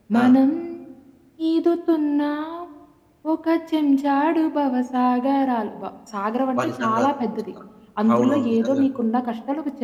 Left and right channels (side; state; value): both; identical; correlation 1.00